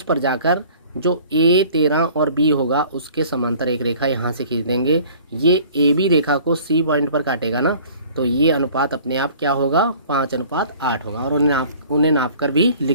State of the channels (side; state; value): both; inverted; correlation -0.49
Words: पर जाकर जो a 13 और b होगा उसके समांतर एक रेखा यहाँ से खींच देंगे। ये AB रेखा को C पॉइंट पर काटेगा ना, तो ये अनुपात अपने आप क्या होगा, 5:8 होगा और उन्हें नाप कर भी